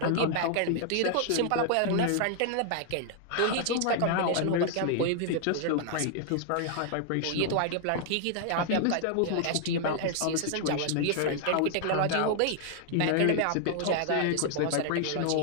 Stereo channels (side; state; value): both; different; correlation 0.00